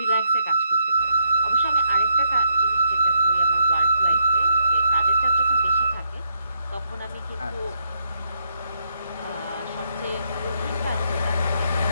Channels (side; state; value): both; inverted; correlation -0.76